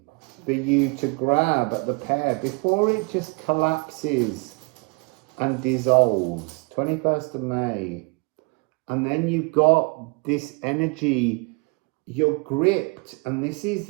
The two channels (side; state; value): left; quieter; 30.9 dB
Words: for you to grab at the pair before it just collapses and dissolves. 21st of May. And then you've got this energy, you're gripped, and this is